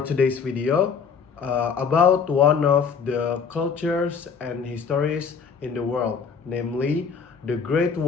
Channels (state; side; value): quieter; right; 6.0 dB